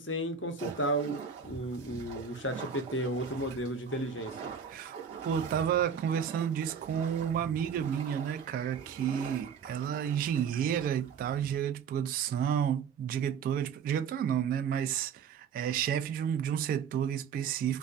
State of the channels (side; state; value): left; quieter; 6.8 dB